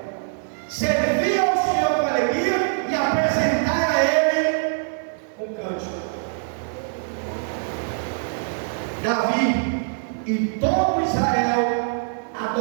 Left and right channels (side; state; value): left; silent; digital silence